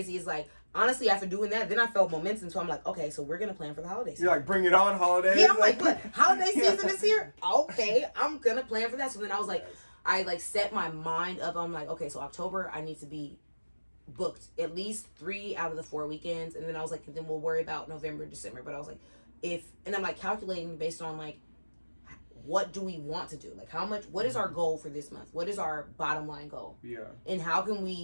is, like, honestly, after doing that, then I felt momentum. So I'm like, okay, so we're going to plan for the holiday season. You're like, bring it on, holidays. Yeah, I'm like, what? Holiday season is here? Okay, I'm going to plan for that. So then I was like, I like set my mind up. I'm like, okay, so October, I need to be booked at least 3 out of the 4 weekends. And then I was like, then we'll worry about November, December. But I was like, and I'm like calculating based on like, what do we want to do? Like, what is our goal for this month? What is our bottom line goal? Yeah. And how can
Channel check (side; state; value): both; inverted; correlation -1.00